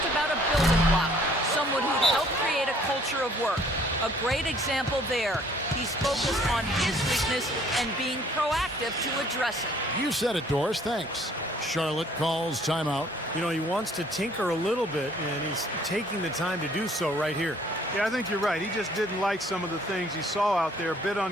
about a building block, someone who'd help create a culture of work. A great example there. He's focused on his weakness and being proactive to address it. You said it, Doris. Thanks. Charlotte calls timeout. You know, he wants to tinker a little bit, and he's taking the time to do so right here. Yeah, I think you're right. He just didn't like some of the things he saw out there, a bit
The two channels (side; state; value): both; normal; correlation 0.59